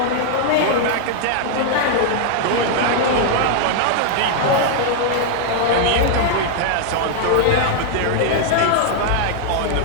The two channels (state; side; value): different; both; correlation 0.00